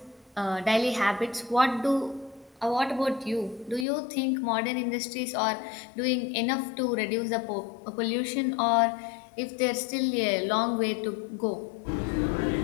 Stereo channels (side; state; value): right; drops out; at 3.9 s